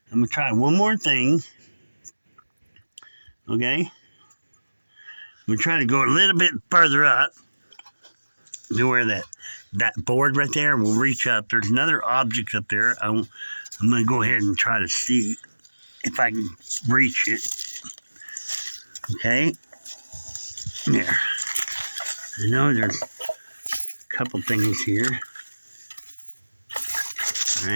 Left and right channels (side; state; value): both; inverted; correlation -1.00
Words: I'm going to try one more thing. Okay? I'm going to try to go a little bit further up to where that board right there will reach up. There's another object up there. I'm going to go ahead and try to see if I can reach it. Okay? There. I know there's a couple things here.